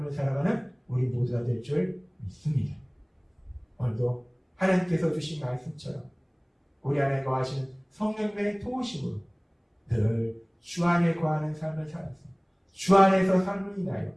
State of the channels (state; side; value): identical; both; correlation 1.00